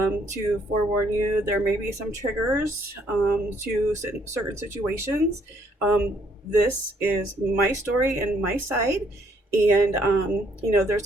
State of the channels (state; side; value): normal; both; correlation 0.68